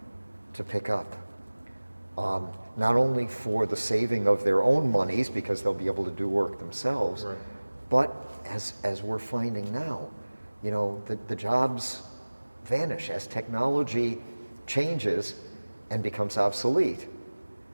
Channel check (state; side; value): inverted; both; correlation -1.00